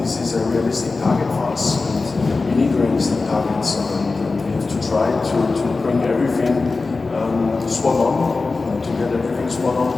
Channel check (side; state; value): right; quieter; 3.9 dB